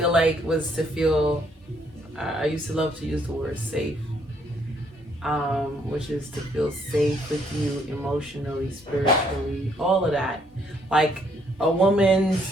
like, was to feel, I used to love to use the word safe, which is to feel safe with you emotionally, spiritually, all of that. Like, a woman's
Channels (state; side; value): normal; both; correlation 0.69